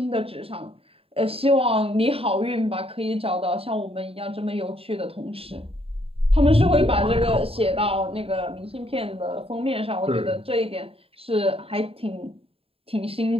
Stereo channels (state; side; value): late; left; 0.27 ms